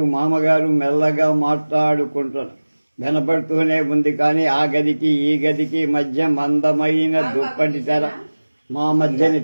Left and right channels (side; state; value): both; inverted; correlation -1.00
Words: మామగారు మెల్లగా మాట్లాడుకుంటున్నారు. వినపడుతూనే ఉంది. కానీ ఆ గదికి ఈ గదికి మధ్య మందమైన దుప్పటి తెర, మా మధ్యని